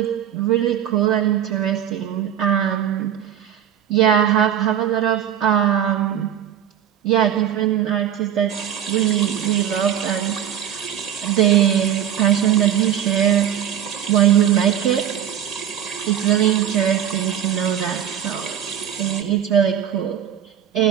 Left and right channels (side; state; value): left; quieter; 9.8 dB